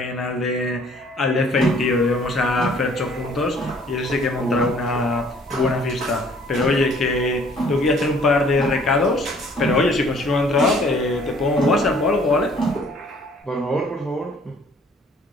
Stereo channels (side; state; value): both; normal; correlation 0.57